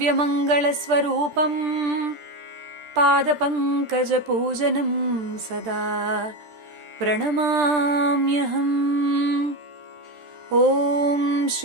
స్వరూపం పాదపంకజ పూజనం సదా ప్రణమామ్యహం. ఓం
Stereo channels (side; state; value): left; late; 13 ms